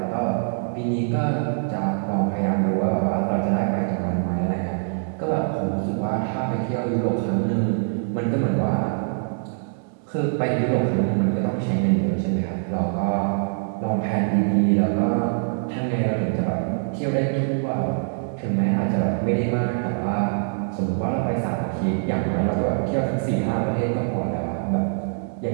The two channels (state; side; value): silent; left; digital silence